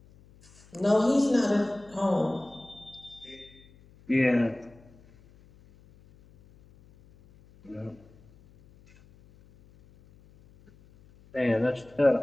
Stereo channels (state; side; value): noise; left; hum, 26 dB below the sound